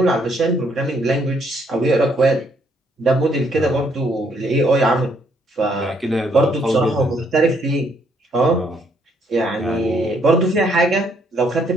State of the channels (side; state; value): both; normal; correlation 0.70